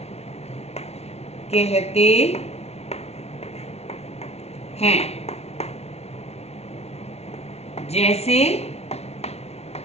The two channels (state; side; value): late; right; 0.31 ms